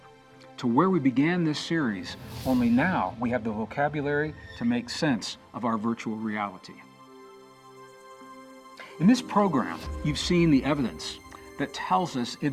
to where we began this series, only now we have the vocabulary to make sense of our virtual reality. In this program, you've seen the evidence that tells us it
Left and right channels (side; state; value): both; identical; correlation 1.00